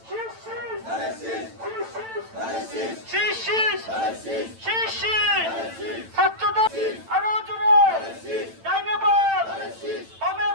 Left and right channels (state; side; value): late; left; 9.0 ms